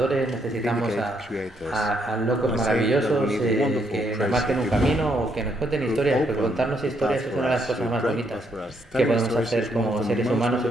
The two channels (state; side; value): normal; both; correlation 0.74